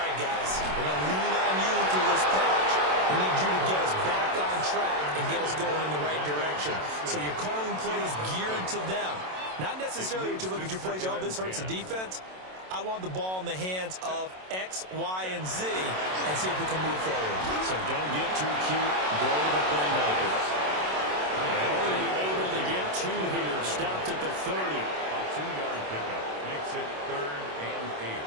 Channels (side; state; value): left; late; 27 ms